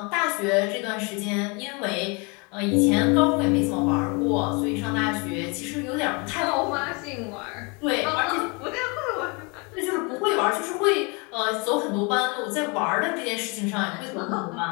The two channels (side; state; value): right; quieter; 30.7 dB